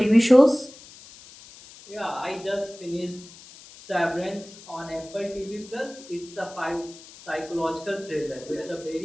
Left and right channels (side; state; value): left; noise; hiss, 19 dB below the sound